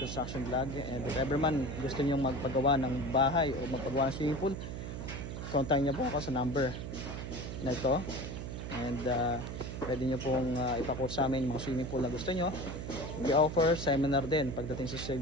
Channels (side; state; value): right; noise; hum, 6 dB below the sound